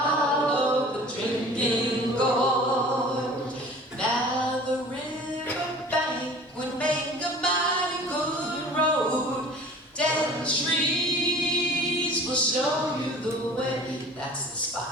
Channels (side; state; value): both; normal; correlation 0.44